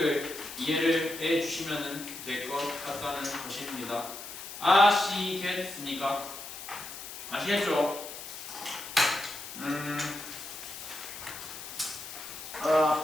이해를 해주시면 될 것 같다는 것입니다. 아시겠습니까? 아시겠죠?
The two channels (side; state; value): left; noise; hiss, 11 dB below the sound